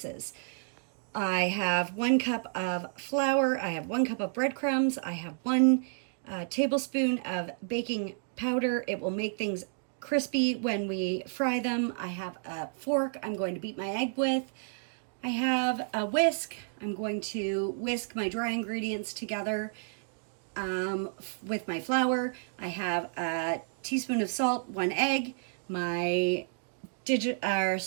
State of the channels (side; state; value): left; silent; digital silence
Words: I have 1 cup of flour, I have 1 cup of breadcrumbs, I have 1 tablespoon of baking powder. It will make things crispy when we fry them. I have a fork I'm going to beat my egg with. I have a whisk. I'm going to whisk my dry ingredients together with my flour. I have a teaspoon of salt, 1 egg, my